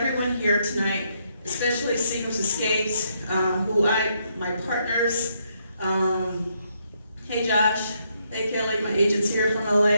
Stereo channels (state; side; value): inverted; both; correlation -0.75